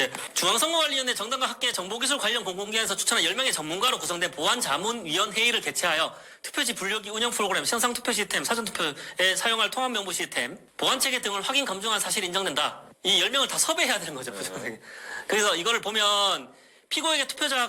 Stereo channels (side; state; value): both; identical; correlation 1.00